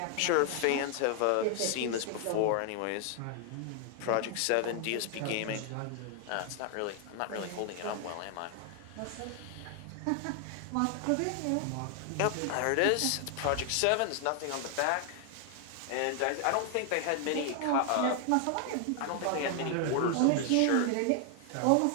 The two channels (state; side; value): different; both; correlation 0.00